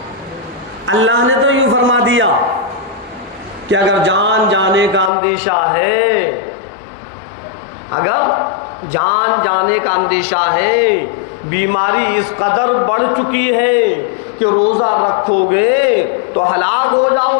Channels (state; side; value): drops out; right; at 5.1 s